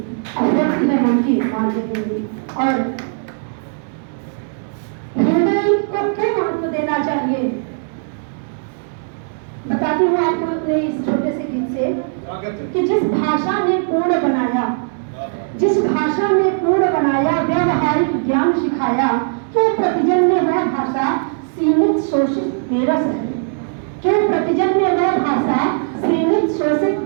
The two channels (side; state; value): left; silent; digital silence